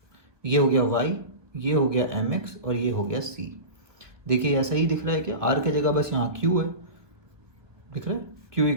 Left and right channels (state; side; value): late; left; 1.1 ms